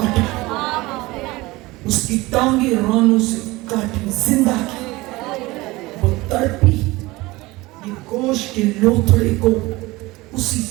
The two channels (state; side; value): quieter; left; 20.9 dB